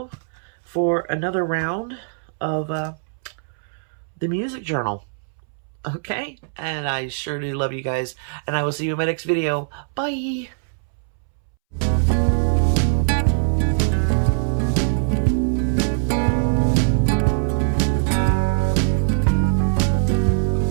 for another round of the music journal. Okay? And I sure do love you guys. And I will see you in my next video. Bye!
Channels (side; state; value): left; silent; 64 dB below the other